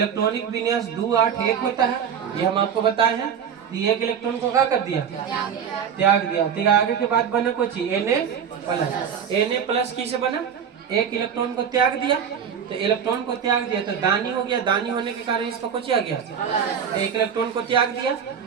विन्यास 2 8 1 होता है। ये हम आपको बताए हैं। एक इलेक्ट्रॉन को क्या कर दिया? त्याग दिया। तो आगे के बाद बना कुछ Na प्लस किसे बना? एक इलेक्ट्रॉन को त्याग दिया, तो इलेक्ट्रॉन को त्याग दिया तो दानी हो गया। दानी होने के कारण इसका कुछ आ गया, तो एक इलेक्ट्रॉन को त्याग दिया।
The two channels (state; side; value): quieter; left; 7.7 dB